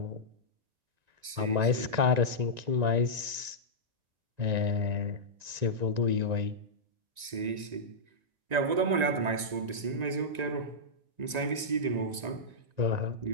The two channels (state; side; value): late; left; 1.9 ms